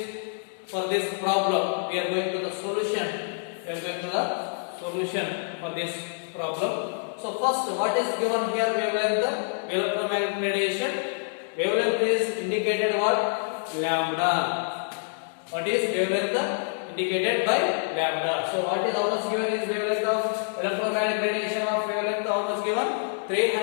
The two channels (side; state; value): right; silent; digital silence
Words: for this problem we are going to the solution. For this problem. So first, what is given here? Wavelength, electromagnetic radiation. Wavelength is indicated what? Lambda. What is wavelength? Indicated by lambda. So what is how much given is wavelength of electromagnetic radiation of wavelength? How much given?